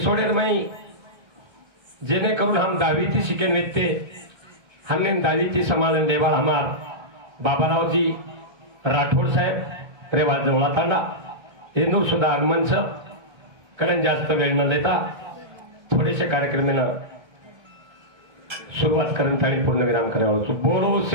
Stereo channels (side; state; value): left; late; 1.7 ms